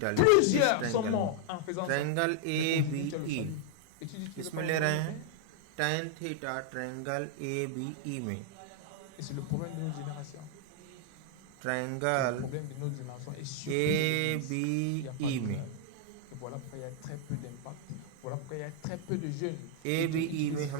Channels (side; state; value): both; different; correlation 0.00